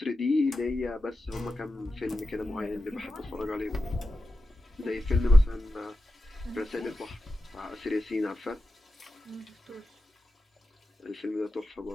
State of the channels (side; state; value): both; normal; correlation 0.91